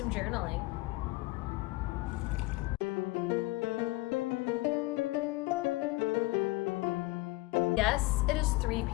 journaling. Yes, it is 3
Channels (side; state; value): right; quieter; 21.2 dB